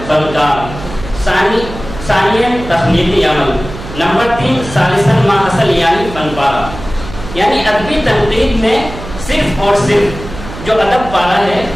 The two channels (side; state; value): right; noise; hum, 12 dB below the sound